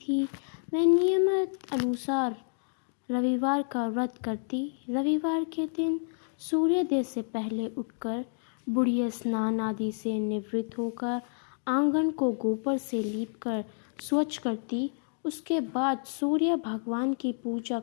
वह नियमित अनुसार रविवार का व्रत करती। रविवार के दिन सूर्योदय से पहले उठकर बुढ़िया स्नान आदि से निवृत्त होकर आंगन को गोबर से लीपकर स्वच्छ करती। उसके बाद सूर्य भगवान की पूजा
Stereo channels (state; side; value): silent; right; digital silence